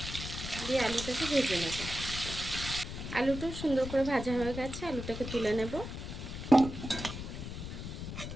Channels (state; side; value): noise; left; rumble, 7 dB below the sound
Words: দিয়ে আলুটাকে ভেজে নেব। আলুটাও সুন্দর করে ভাজা হয়ে গেছে, আলুটাকে তুলে নেব।